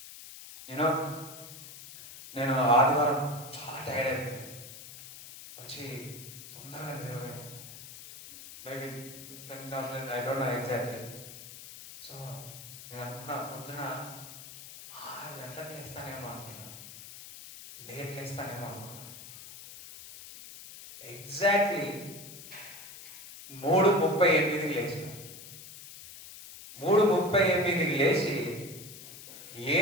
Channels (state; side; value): noise; left; hiss, 14 dB below the sound